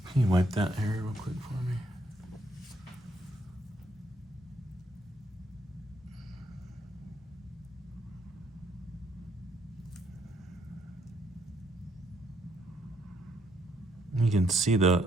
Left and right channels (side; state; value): both; normal; correlation 0.71